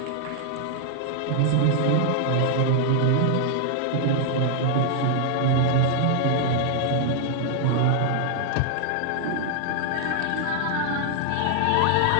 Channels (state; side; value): different; both; correlation 0.00